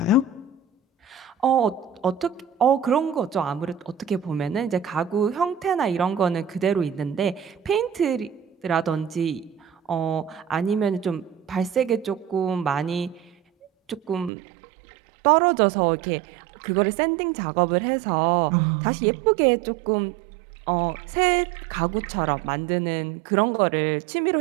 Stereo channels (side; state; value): left; drops out; at 14.3 s